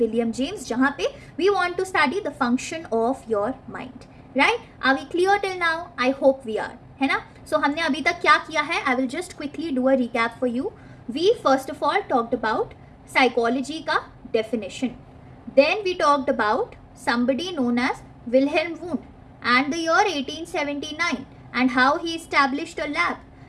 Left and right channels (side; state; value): both; identical; correlation 1.00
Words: James, जहां पे we want to study the function of your mind. Right? Are we clear till now? I hope we are, है ना. सो हमने अभी तक क्या किया है? I will just quickly do a recap for you. We first of all talked about psychology का definition. Then we talked about somebody known as Wilhelm Wundt and the year 1879 and how he established a lab